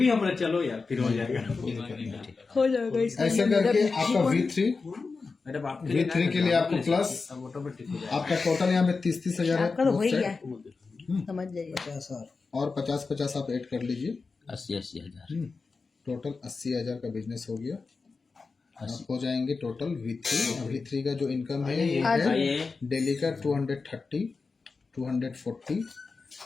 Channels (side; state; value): right; quieter; 4.4 dB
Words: हमारा चलो यार, फिर हो जाएगा। हो जाएगा इसका। ऐसे करके आपका मैडम आपके V3 के लिए आपको प्लस ऑटोमेटिक हो जाएगा। आपका टोटल यहाँ पे 30,000 है आपका तो हो ही both गया, side। समझ जाइए। 50,000 और 50 आप ऐड कर लीजिए, 80 हजार। टोटल 80,000 का बिजनेस हो गया। आप हो जाएंगे टोटल V3 का जो इनकम है ये है आइए डेली का 230 240